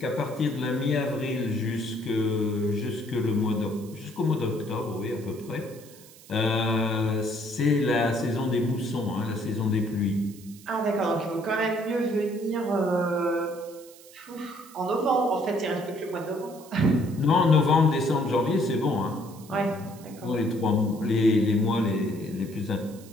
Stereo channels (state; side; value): noise; right; hiss, 22 dB below the sound